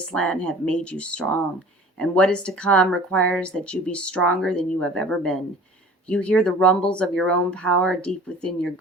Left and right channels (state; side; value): normal; both; correlation 0.45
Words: have made you strong, and what is to come requires that you be stronger than you have ever been. You hear the rumbles of your own power deep within your